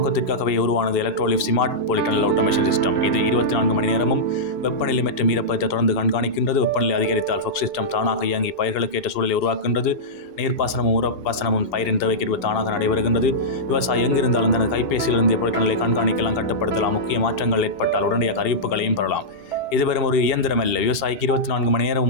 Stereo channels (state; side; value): late; right; 2.7 ms